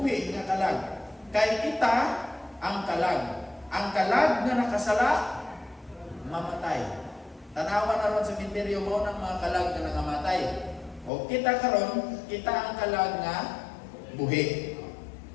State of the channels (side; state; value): right; drops out; at 11.1 s